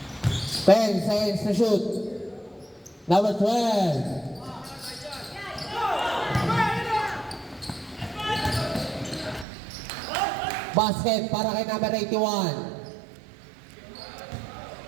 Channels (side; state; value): left; drops out; at 9.5 s